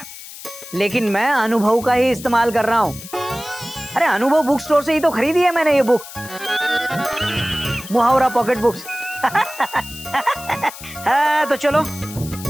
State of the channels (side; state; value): left; noise; hiss, 14 dB below the sound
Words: लेकिन मैं अनुभव का ही इस्तेमाल कर रहा हूँ। अरे अनुभव बुक स्टोर से ही तो खरीदी है मैंने ये बुक, मुहावरा पॉकेट बुक्स। हाँ, तो चलो